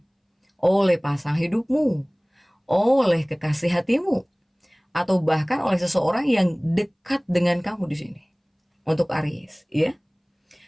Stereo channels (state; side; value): identical; both; correlation 1.00